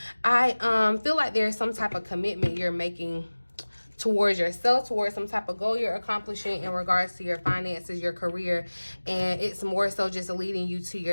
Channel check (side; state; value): both; inverted; correlation -1.00